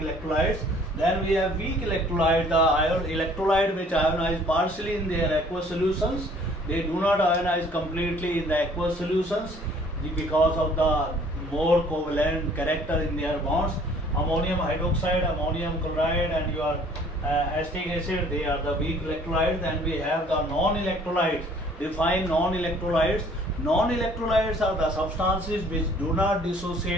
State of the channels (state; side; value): normal; both; correlation 0.56